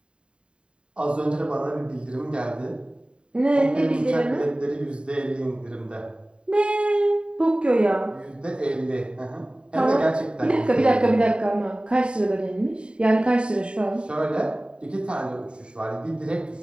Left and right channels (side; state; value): left; late; 0.052 ms